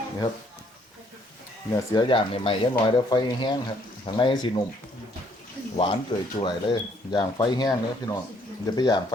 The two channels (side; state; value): both; normal; correlation 0.66